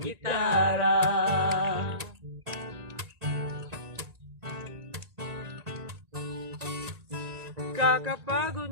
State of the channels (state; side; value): late; left; 1.9 ms